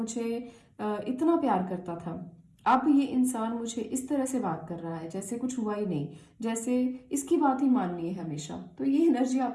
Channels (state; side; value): identical; both; correlation 1.00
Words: इतना प्यार करता था, अब ये इंसान मुझे इस तरह से बात कर रहा है जैसे कुछ हुआ ही नहीं, जैसे इसकी बात ही माननी है हमेशा। तो ये एनर्जी